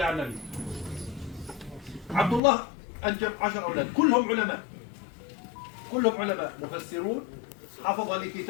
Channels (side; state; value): right; drops out; at 2.4 s